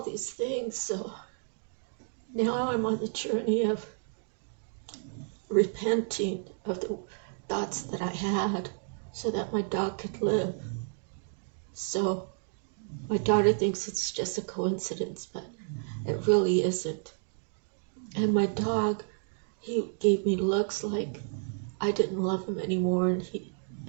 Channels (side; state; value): left; silent; digital silence